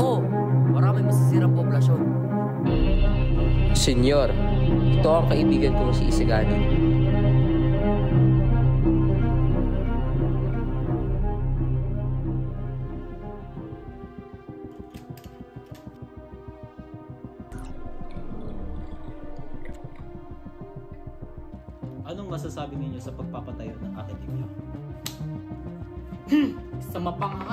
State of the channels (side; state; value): both; identical; correlation 1.00